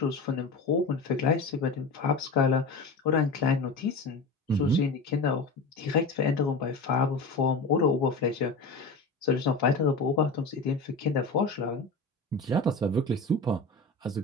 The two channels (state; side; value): quieter; right; 3.5 dB